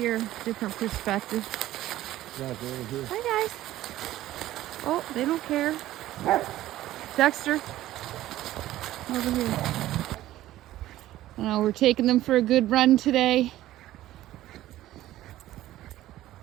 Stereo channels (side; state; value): left; quieter; 14.6 dB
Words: Different perspective. Hi, guys. Oh, they don't care. Dexter. Over here. We're taking them for a good run today.